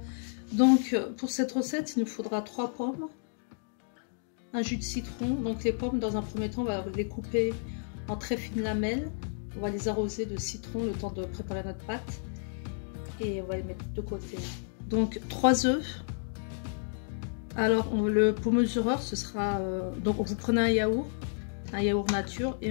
Donc, pour cette recette, il nous faudra 3 pommes, un jus de citron. Donc, les pommes, dans un premier temps, on va les couper en très fines lamelles. On va les arroser de citron le temps de préparer notre pâte. Et on va les mettre de côté. Donc, 3 œufs. Alors, pour mesureur, ce sera... donc, vous prenez un yaourt nature, et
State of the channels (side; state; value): right; silent; digital silence